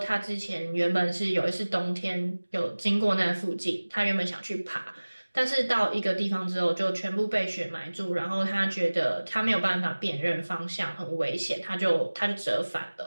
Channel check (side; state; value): both; inverted; correlation -1.00